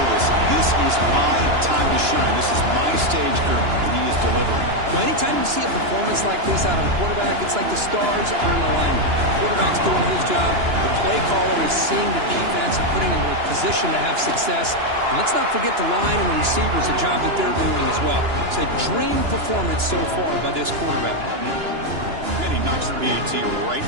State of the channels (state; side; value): late; left; 2.9 ms